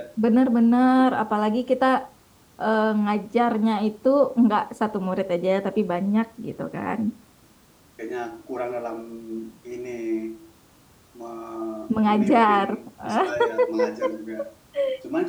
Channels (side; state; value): both; identical; correlation 1.00